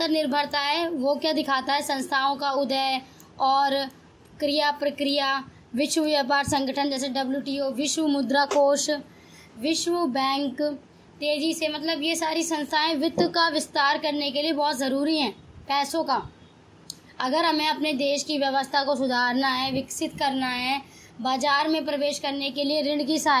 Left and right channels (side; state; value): both; identical; correlation 1.00